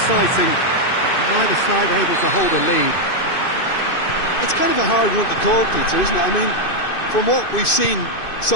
but neither side able to hold a lead. It's kind of a hard one to call, Peter, isn't it? I mean, from what we've seen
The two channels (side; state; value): right; late; 2.6 ms